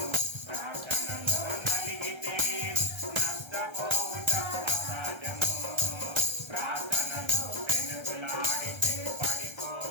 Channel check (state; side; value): late; left; 1.3 ms